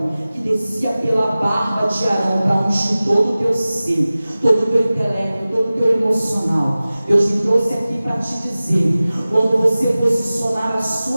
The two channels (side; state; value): both; inverted; correlation -0.97